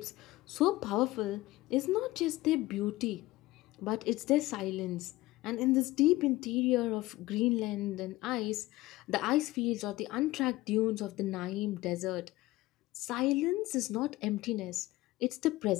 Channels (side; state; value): right; quieter; 18.4 dB